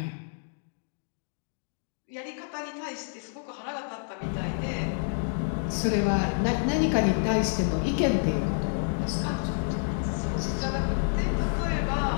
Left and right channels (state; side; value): silent; right; digital silence